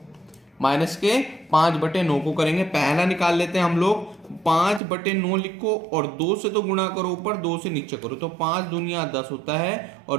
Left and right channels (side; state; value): left; drops out; at 4.8 s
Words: माइनस के 5/9 को करेंगे। पहला निकाल लेते हैं हम लोग। 5/9 लिखो और 2 से तो गुणा करो ऊपर, 2 से नीचे करो, तो 5 दूनिया 10 होता है